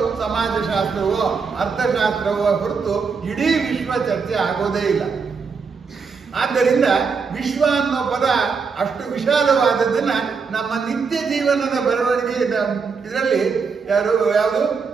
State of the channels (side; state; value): left; quieter; 5.3 dB